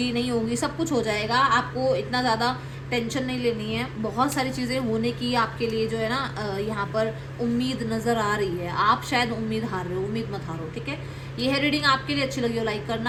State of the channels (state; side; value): identical; both; correlation 1.00